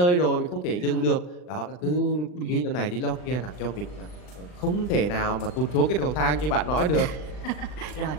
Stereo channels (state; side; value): late; right; 39 ms